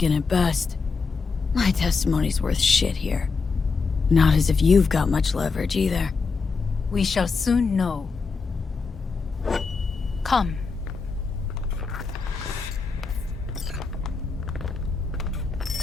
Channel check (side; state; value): right; quieter; 4.7 dB